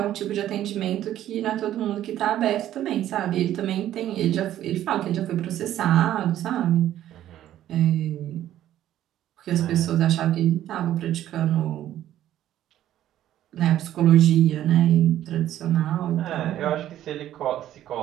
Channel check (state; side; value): quieter; left; 12.4 dB